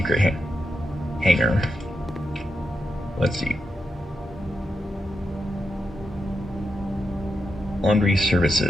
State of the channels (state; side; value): normal; both; correlation 0.86